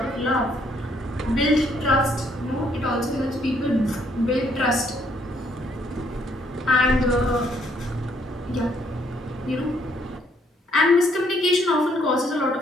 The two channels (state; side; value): normal; both; correlation 0.68